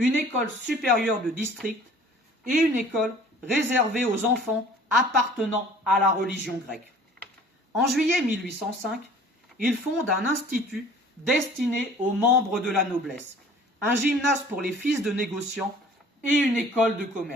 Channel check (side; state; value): both; normal; correlation 0.49